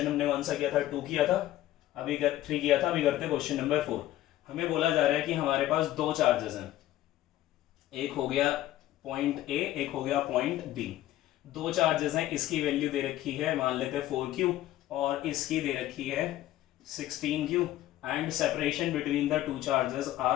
हमने कौन सा किया था? 2 किया था, अभी 3 किया था, अभी करते क्वेश्चन नंबर 4। हमें बोला जा रहा है कि हमारे पास दो चार्जेस हैं, एक हो गया पॉइंट A, एक हो गया पॉइंट B। दो चार्जेस हैं, इसकी वैल्यू दे रखी है मान लेते हैं 4Q, और इसकी दे रखी है 16Q, and separation between the two charges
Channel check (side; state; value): right; quieter; 14.3 dB